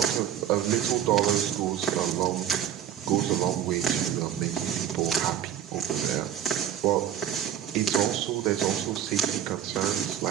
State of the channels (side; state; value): left; quieter; 10.2 dB